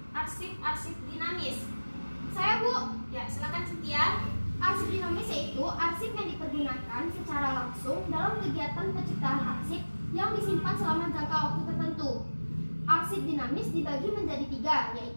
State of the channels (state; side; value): inverted; both; correlation -1.00